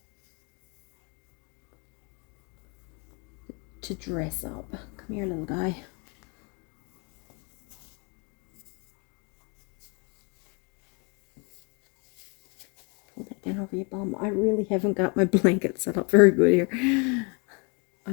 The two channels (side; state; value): right; quieter; 32.9 dB